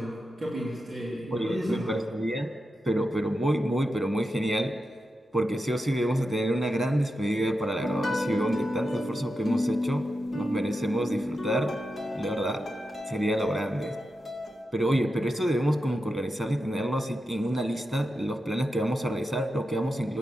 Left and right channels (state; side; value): normal; both; correlation 0.89